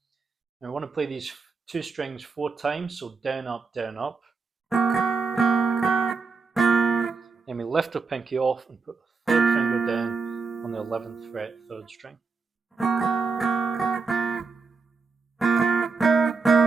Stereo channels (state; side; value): quieter; left; 4.6 dB